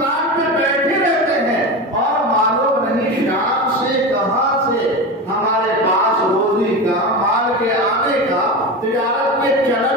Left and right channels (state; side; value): normal; both; correlation 0.23